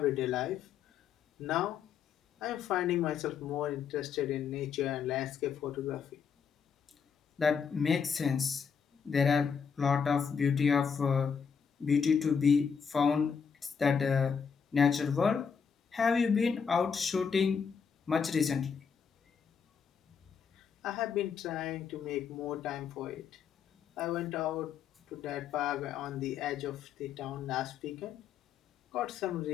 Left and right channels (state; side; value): quieter; right; 6.5 dB